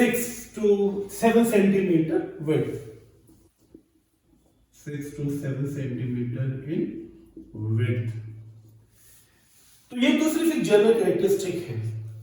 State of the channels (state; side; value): identical; both; correlation 1.00